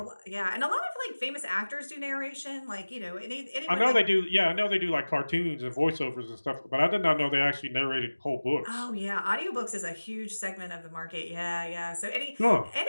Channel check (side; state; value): both; inverted; correlation -1.00